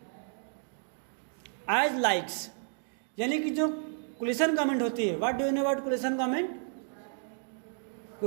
as likes. यानी कि जो coalition government होती है, what do you know about coalition government?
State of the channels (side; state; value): left; silent; digital silence